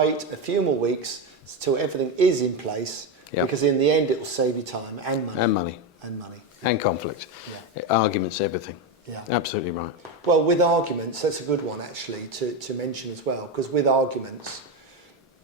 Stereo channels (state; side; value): normal; both; correlation 0.12